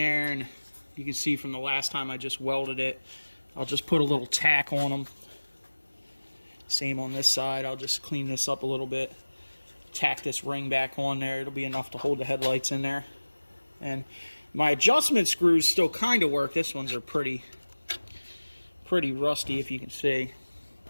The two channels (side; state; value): both; inverted; correlation -1.00